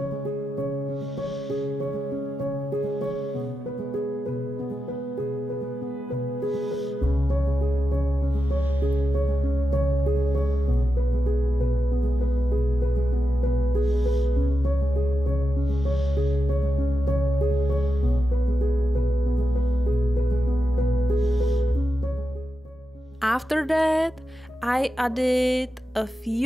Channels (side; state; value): both; normal; correlation 0.89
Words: After that, I added a